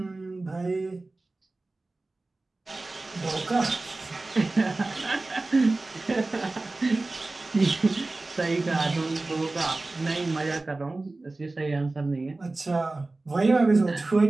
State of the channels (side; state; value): left; quieter; 3.2 dB